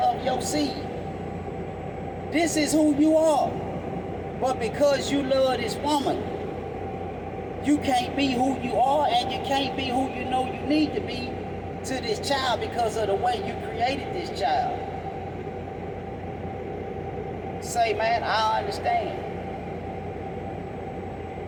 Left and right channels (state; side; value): identical; both; correlation 1.00